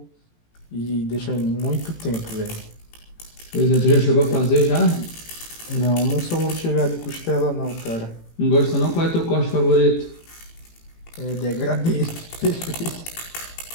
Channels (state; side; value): late; right; 18 ms